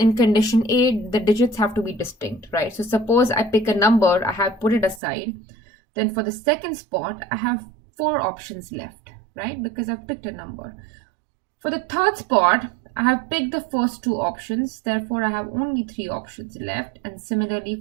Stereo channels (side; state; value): left; drops out; at 5.0 s